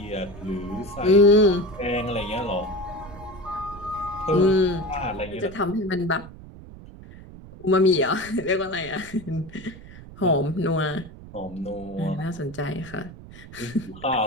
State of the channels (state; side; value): noise; right; rumble, 17 dB below the sound